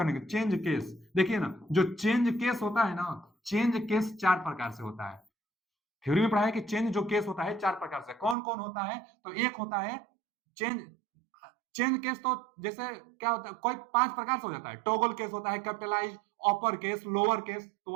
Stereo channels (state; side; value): drops out; left; at 8.3 s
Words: के, चेंज केस देखिए ना, जो चेंज केस होता है ना, चेंज केस चार प्रकार से होता है। थ्योरी में पढ़ा है कि चेंज जो केस होता है चार प्रकार से। कौन कौन होता है? तो एक होता है चेंज चेंज केस, तो जैसे क्या होता है, कोई पांच प्रकार से हो जाता है। टॉगल केस होता है, capitalize, upper case, lower case, तो